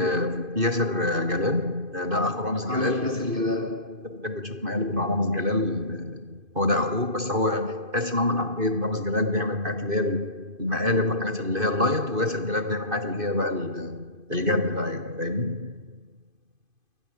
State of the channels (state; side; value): late; left; 2.5 ms